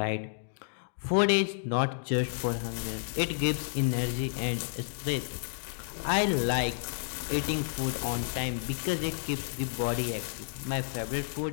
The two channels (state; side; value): silent; right; digital silence